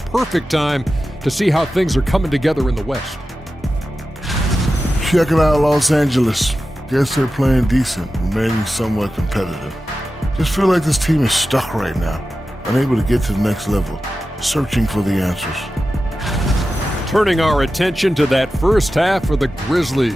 time to see how things are coming together in the West. Checking out Los Angeles. Guess they're playing decent, remaining somewhat competitive. Just feel like this team is stuck right now, unable to get to the next level, searching for the answers. Turning our attention to that first half for the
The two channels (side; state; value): both; normal; correlation 0.93